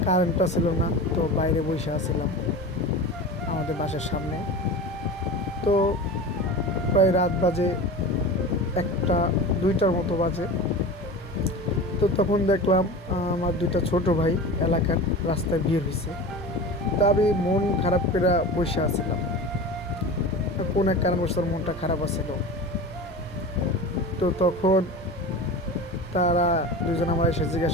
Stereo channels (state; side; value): normal; both; correlation 0.32